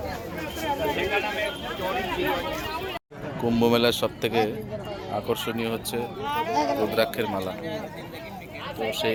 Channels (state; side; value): identical; both; correlation 1.00